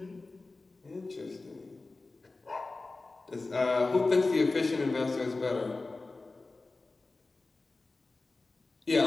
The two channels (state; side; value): quieter; right; 3.5 dB